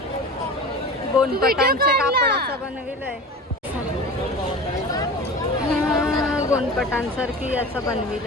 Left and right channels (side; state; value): both; normal; correlation 0.34